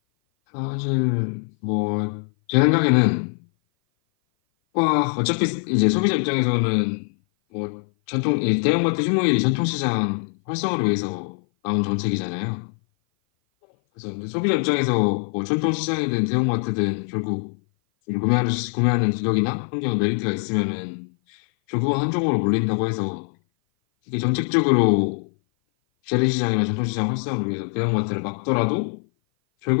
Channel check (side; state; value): right; silent; 56 dB below the other